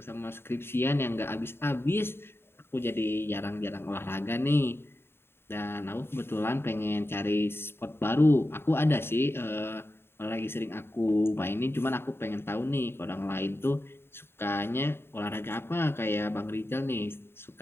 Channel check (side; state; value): right; late; 0.11 ms